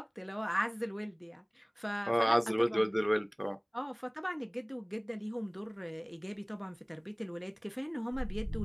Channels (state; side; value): identical; both; correlation 1.00